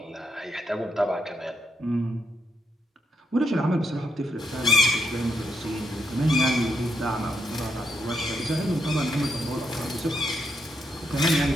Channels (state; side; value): normal; both; correlation 0.79